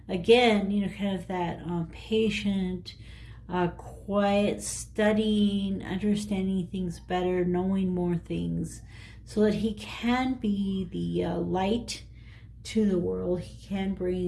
again. You know, kind of that patient, quiet, studying, understanding things better, knowing more things, so that he can be the light to the world. He can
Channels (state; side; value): identical; both; correlation 1.00